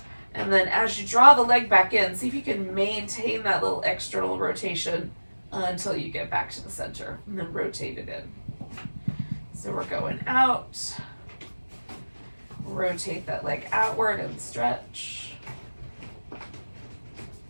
And then as you draw the leg back in, see if you can maintain that little external rotation until you get back to the center, and then rotate it in. So we're going out, rotate that leg outward and stretch. And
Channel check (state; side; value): inverted; both; correlation -1.00